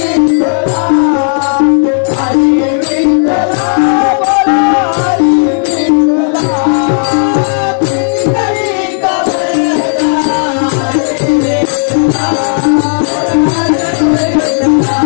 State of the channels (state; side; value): silent; right; digital silence